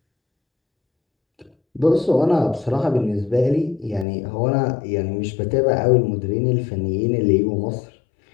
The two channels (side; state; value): right; drops out; at 4.0 s